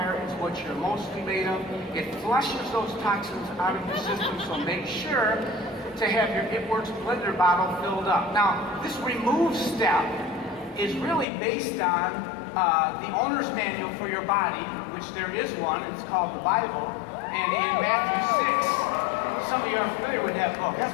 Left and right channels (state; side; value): drops out; right; at 11.2 s